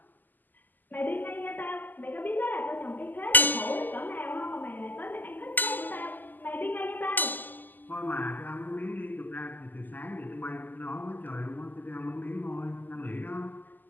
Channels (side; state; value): right; late; 0.086 ms